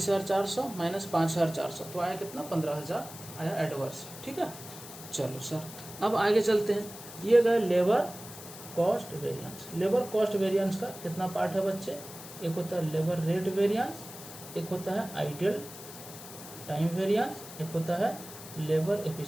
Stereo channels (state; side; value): noise; left; hiss, 14 dB below the sound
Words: माइनस 5400 तो आया कितना, 15000 आया एडवर्स। ठीक है, चलो सर अब आगे चलते हैं। ये गए labour cost variance. Labour cost variance का कितना पार्ट है बच्चे? एक होता है लेबर रेट वेरिएंस, एक होता है आइडियल टाइम वेरिएंस, एक होता है लेबर